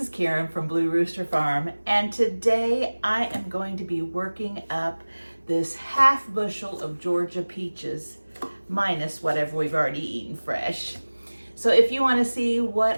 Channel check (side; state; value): both; inverted; correlation -1.00